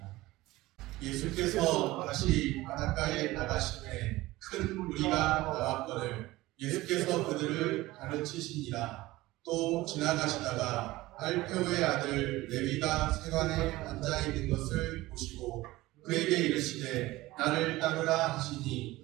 예수께서 다시 바닷가에 나가시매 큰 무리가 나왔거늘 예수께서 그들을 가르치시니라. 또 지나가시다가 알페오의 아들 레위가 세관에 앉아있는 것을 보시고 그에게 이르시되 나를 따르라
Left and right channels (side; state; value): left; quieter; 18.5 dB